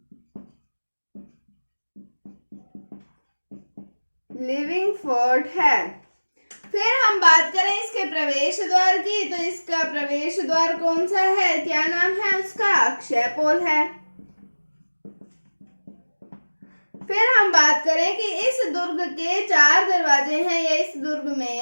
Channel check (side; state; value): both; inverted; correlation -1.00